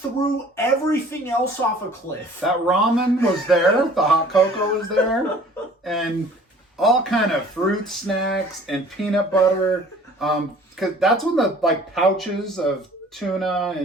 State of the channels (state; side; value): normal; both; correlation 0.51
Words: everything else off a cliff. That ramen was there, the hot cocoa was there, and all kind of fruit snacks and peanut butter. Because that's when the pouches of tuna